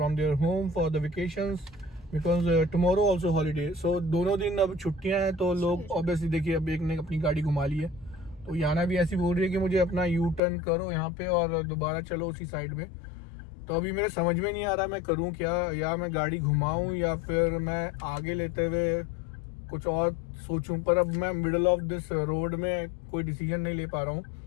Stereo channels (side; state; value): right; drops out; at 10.4 s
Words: their home for the vacations. Because tomorrow also holiday. So दोनों दिन अब छुट्टियां हैं तो लोग obviously देखिए अब एक ने अपनी गाड़ी घुमा ली है तो याना भी ऐसी बोल रही है कि मुझे अपना यू टर्न करो यहाँ पे और दोबारा चलो उसी साइड में। तो अभी मेरे समझ में नहीं आ रहा मैं करूँ क्या, या मैं गाड़ी घुमाऊँ या फिर मैं आगे लेते हुए कुछ और सोचूं। पर अब मैं मिडल ऑफ दिस रोड में कोई डिसीजन नहीं ले पा रहा हूँ